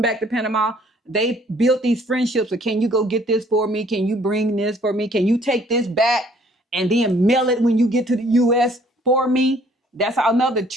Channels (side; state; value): both; normal; correlation 0.60